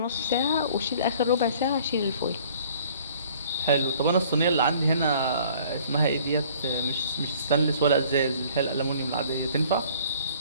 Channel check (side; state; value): both; inverted; correlation -0.54